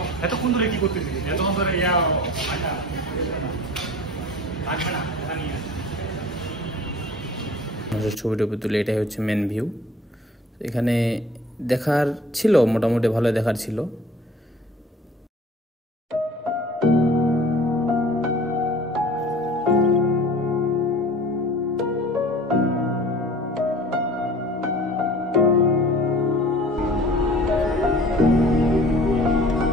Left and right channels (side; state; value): both; normal; correlation 0.45